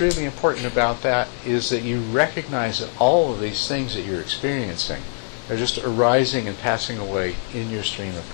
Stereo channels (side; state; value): right; silent; 64 dB below the other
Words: really important about that is that you recognize that all of these things that you're experiencing are just arising and passing away in your stream of